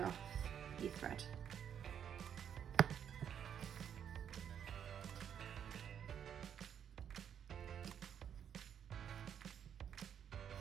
off your thread.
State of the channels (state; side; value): quieter; left; 8.7 dB